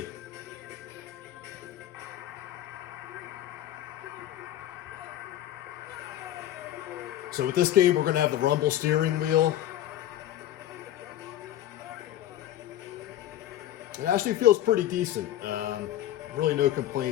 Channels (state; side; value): quieter; right; 12.8 dB